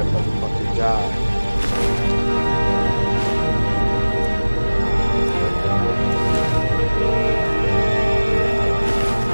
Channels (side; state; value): both; inverted; correlation -1.00